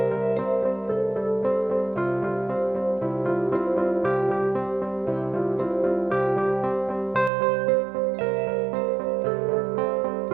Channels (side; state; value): left; drops out; at 7.3 s